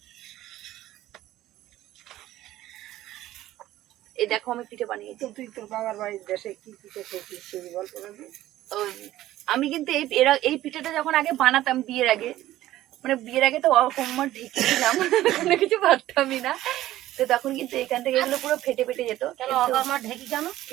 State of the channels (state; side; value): quieter; left; 14.6 dB